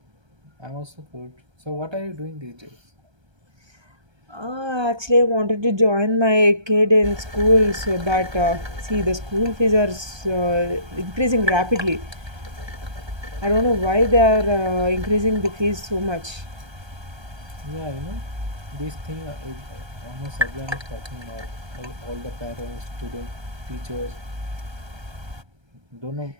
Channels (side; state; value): left; late; 1.3 ms